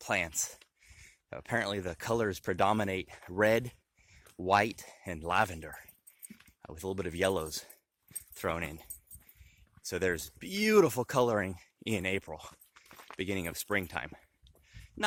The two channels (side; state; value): both; identical; correlation 1.00